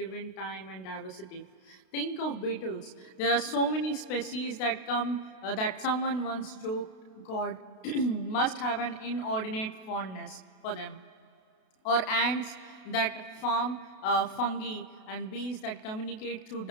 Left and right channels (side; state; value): right; late; 32 ms